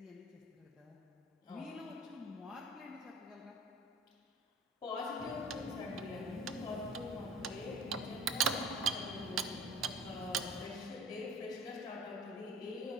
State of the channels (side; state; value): both; normal; correlation 0.43